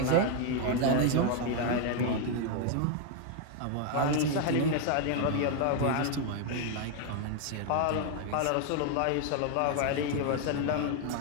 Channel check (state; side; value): different; both; correlation 0.01